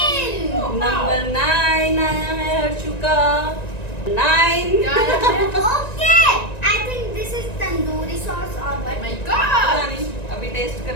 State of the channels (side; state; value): right; late; 1.9 ms